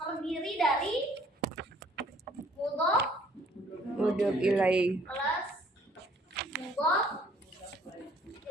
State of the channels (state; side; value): normal; both; correlation 0.60